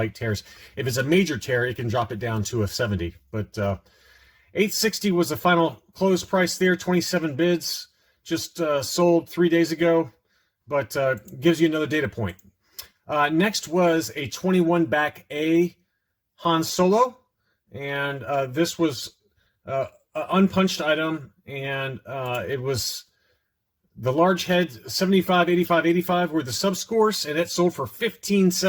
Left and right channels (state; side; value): identical; both; correlation 1.00